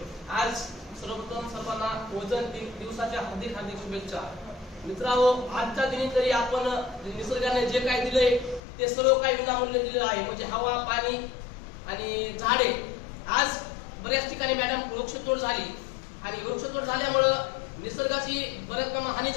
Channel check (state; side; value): drops out; right; at 8.6 s